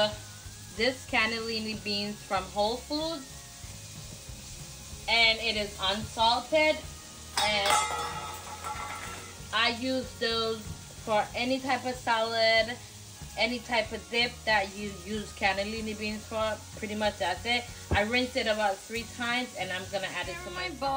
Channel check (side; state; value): both; identical; correlation 1.00